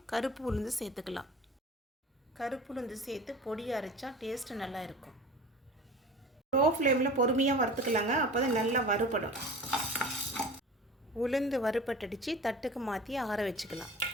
கருப்பு உளுந்து சேர்த்துக்கலாம். கருப்பு உளுந்து சேர்த்து பொடி அரைச்சா டேஸ்ட்டு நல்லா இருக்கும். லோ ஃப்ளேமில் பொறுமையாக வறுத்துக்கலாங்க, அப்போ தான் நல்லா வறுபடும். உளுந்து வறுபட்டடிச்சு தட்டுக்கு மாற்றி ஆற வச்சுக்கலாம்.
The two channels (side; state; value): both; normal; correlation 0.38